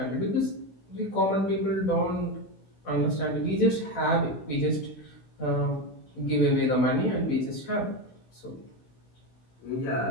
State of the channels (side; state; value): right; late; 16 ms